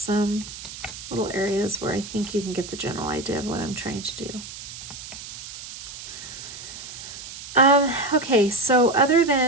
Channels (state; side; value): noise; right; hiss, 12 dB below the sound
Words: little areas where I think you can get the general idea of what I'm trying to do. Okay, so other